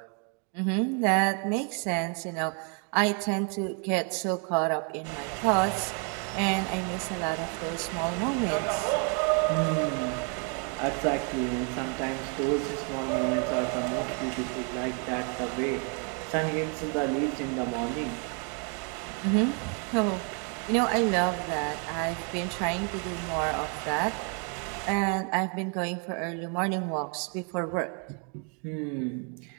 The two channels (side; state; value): left; quieter; 38.7 dB